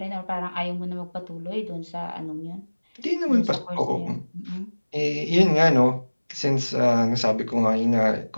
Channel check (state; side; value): inverted; both; correlation -1.00